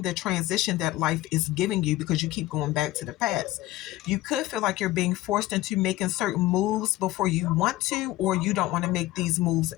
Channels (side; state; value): right; quieter; 16.7 dB